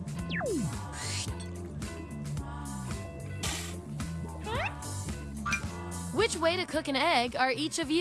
Which way to cook an egg are each of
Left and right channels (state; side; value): identical; both; correlation 1.00